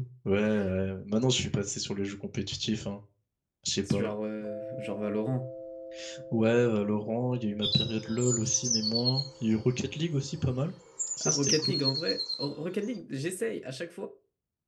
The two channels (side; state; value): both; identical; correlation 1.00